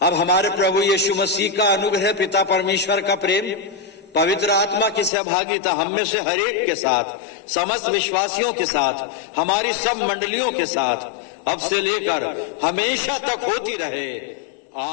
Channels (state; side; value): drops out; right; at 5.1 s